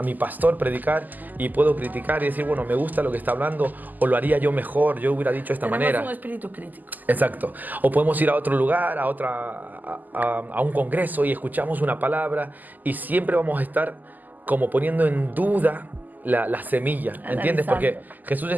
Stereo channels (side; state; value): left; late; 0.084 ms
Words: mi pastor predicar y puedo criticar y decir, bueno, me gusta lo que está hablando o lo haría yo mejor, yo hubiera dicho de esta manera. Tenemos un espíritu crítico. Exacto. O podemos ir a otro lugar, a un congreso y escuchamos una palabra y siempre vamos a estar como poniendo en duda la semilla, ¿entiendes? Porque Jesús